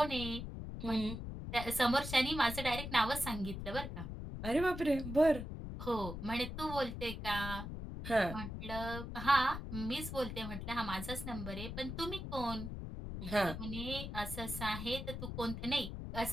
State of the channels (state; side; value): noise; left; rumble, 7 dB below the sound